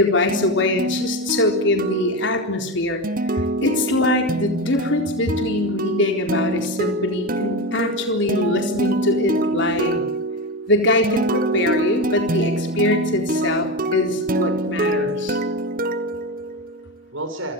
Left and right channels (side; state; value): both; normal; correlation 0.19